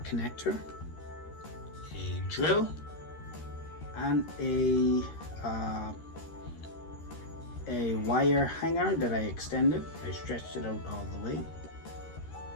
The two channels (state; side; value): late; right; 13 ms